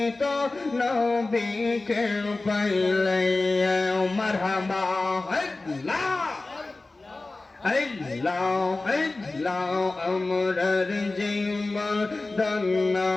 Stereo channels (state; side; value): quieter; right; 3.2 dB